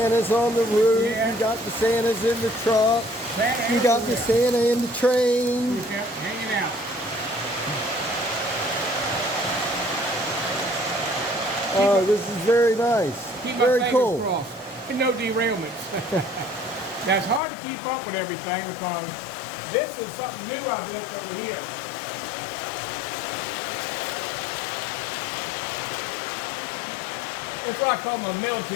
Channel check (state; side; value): drops out; right; at 17.4 s